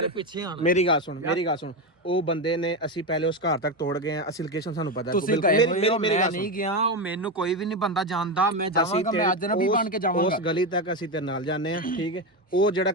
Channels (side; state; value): both; normal; correlation 0.13